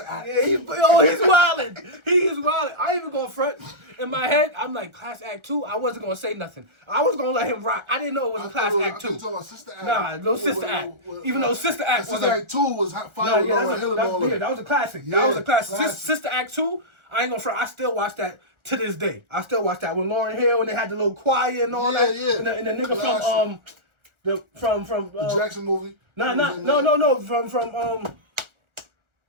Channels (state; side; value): late; left; 1.4 ms